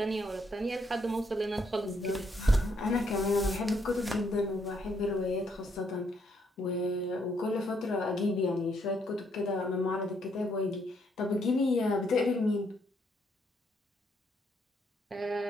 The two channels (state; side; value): normal; both; correlation 0.73